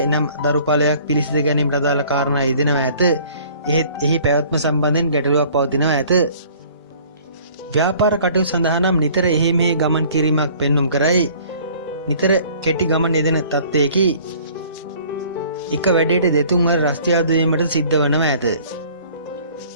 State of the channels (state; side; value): inverted; both; correlation -0.52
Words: දරුඵලයක් පිළිසිඳ ගැනීමට අදාළ කාරණා යෙදෙනවා ඇත. එහෙත් එහි පැවැත්ම සම්බන්ධයෙන් ගැටලුවක් පවතිනවා ඇත. ව්‍යාපාර කටයුතු සඳහා නම් නිතර එහි මෙහි ගමන් කිරීමක් පෙන්눔 කරයි. නිතර කෙටි ගමන් යෙදෙන තත්ත්වයකි. එක වැඩේට දෙතුන් වර රස්තියාදු වීමට සිද්ධ වනවා ඇත.